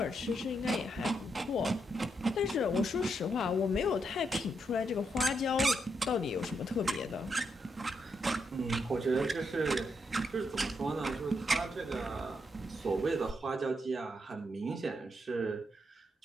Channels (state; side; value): normal; both; correlation 0.80